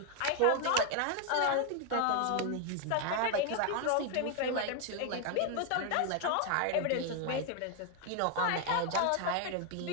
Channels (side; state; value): both; different; correlation 0.01